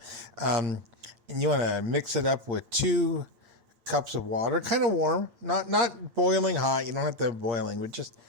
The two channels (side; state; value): left; late; 8.6 ms